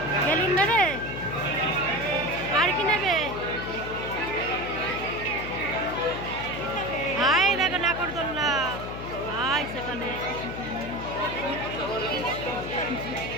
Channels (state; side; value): noise; left; hum, 8 dB below the sound